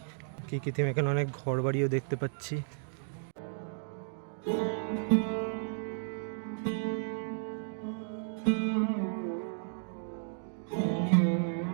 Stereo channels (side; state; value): left; silent; digital silence